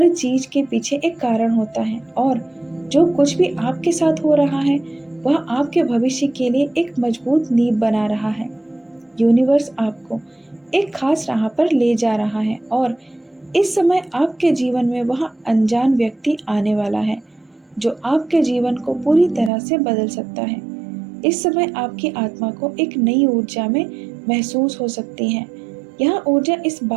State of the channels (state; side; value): drops out; left; at 19.5 s